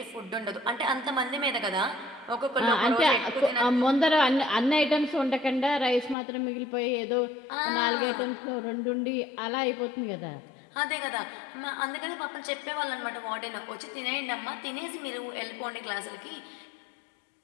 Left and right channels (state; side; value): drops out; right; at 6.2 s